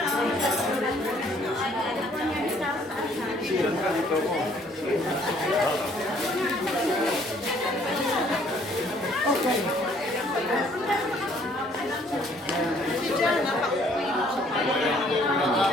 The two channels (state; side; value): normal; both; correlation 0.61